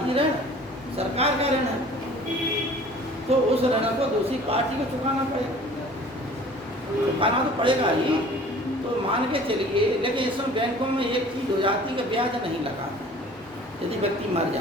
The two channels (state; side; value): normal; both; correlation 0.48